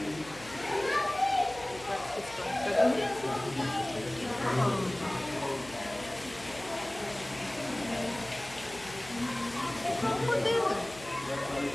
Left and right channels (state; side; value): noise; left; hum, 18 dB below the sound